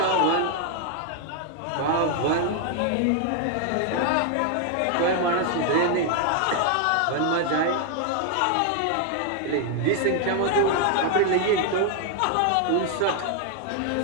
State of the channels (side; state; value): both; different; correlation 0.00